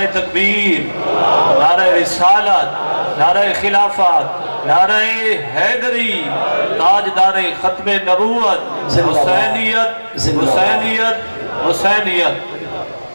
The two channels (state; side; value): inverted; both; correlation -1.00